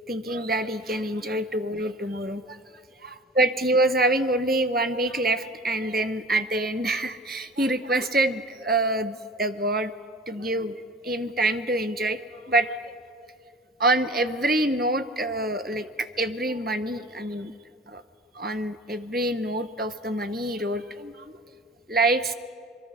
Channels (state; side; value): normal; both; correlation 0.42